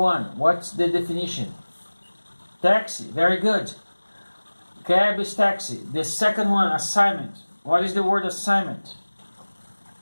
what's the definition? Taxi, very good. Cab is taxi. The second one, assignment. What is the word assignment?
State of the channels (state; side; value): inverted; both; correlation -1.00